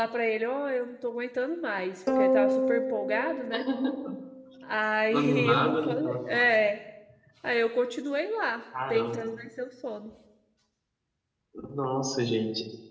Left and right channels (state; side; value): identical; both; correlation 1.00